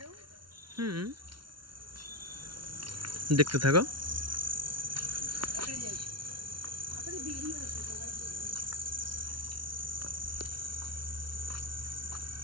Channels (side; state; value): left; late; 0.72 ms